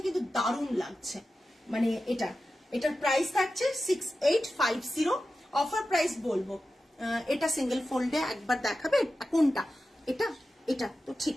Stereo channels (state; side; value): normal; both; correlation 0.93